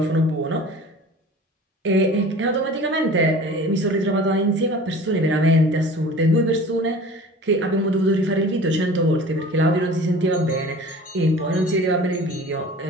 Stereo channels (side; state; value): both; normal; correlation 0.42